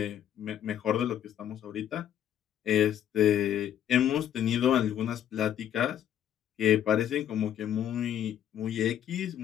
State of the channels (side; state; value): right; quieter; 10.4 dB